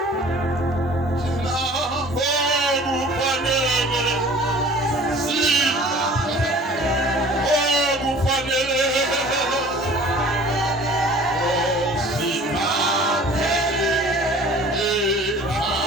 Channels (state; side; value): normal; both; correlation 0.48